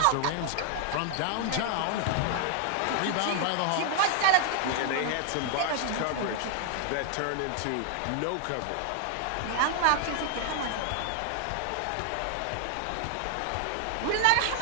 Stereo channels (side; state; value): both; different; correlation 0.00